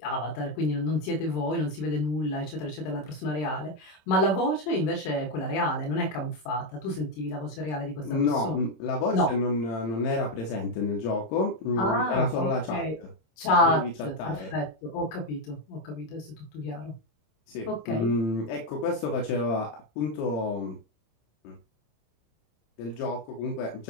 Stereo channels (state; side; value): late; right; 26 ms